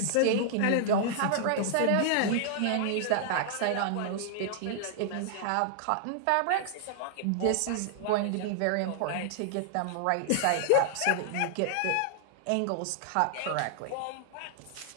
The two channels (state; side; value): different; both; correlation -0.01